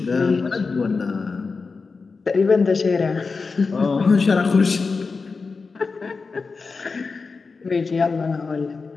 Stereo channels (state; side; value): quieter; right; 4.5 dB